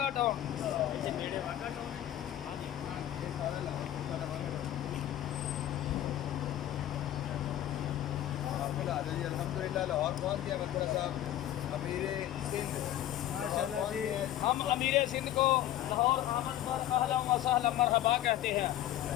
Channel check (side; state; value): right; quieter; 12.8 dB